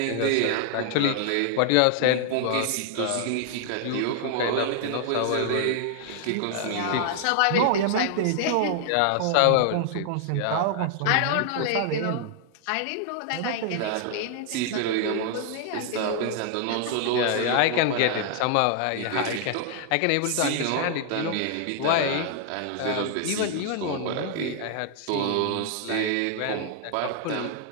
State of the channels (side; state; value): both; different; correlation 0.00